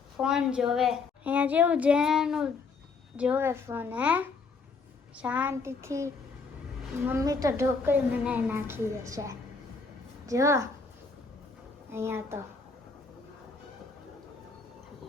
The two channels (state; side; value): quieter; right; 4.6 dB